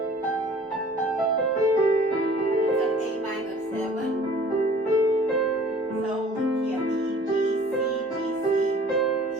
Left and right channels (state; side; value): normal; both; correlation 0.50